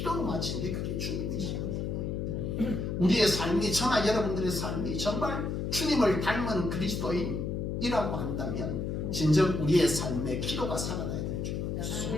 마친 게 그게 주님이시거든요. 우리의 삶이 저나 여러분들의 삶이 정말 주님을 닮은 그리스도인이라고 한다면 진정 우리의 삶에 기도가 살아나야 될 줄 알았습니다.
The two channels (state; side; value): noise; left; hum, 2 dB below the sound